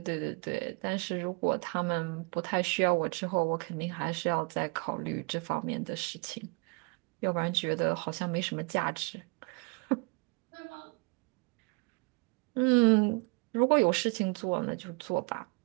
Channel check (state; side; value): quieter; left; 32.2 dB